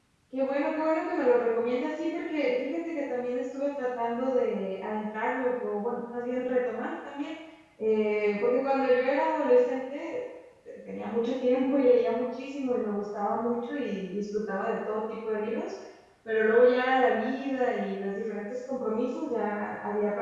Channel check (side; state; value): both; identical; correlation 1.00